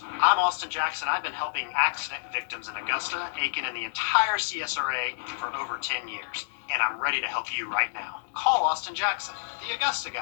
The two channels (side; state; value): right; silent; digital silence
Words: I'm Austin Jackson. I've been helping accident victims in Augusta, Aiken, and the entire CSRA for over 10 years. And I'm ready to help you right now. Call Austin Jackson, the Augusta